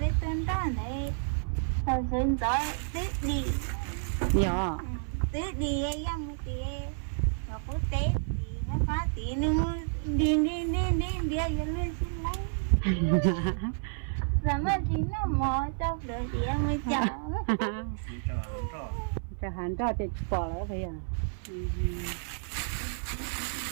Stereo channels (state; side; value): silent; left; 55 dB below the other